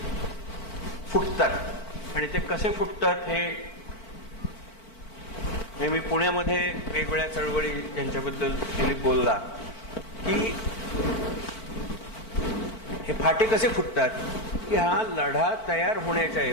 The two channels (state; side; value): late; right; 4.5 ms